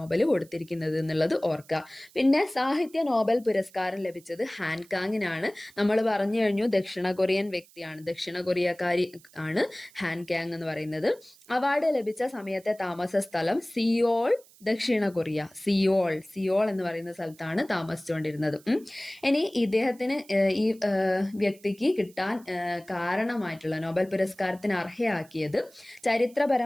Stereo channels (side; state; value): right; noise; hiss, 26 dB below the sound